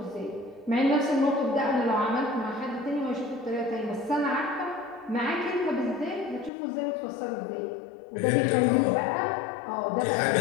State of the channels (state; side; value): drops out; right; at 6.5 s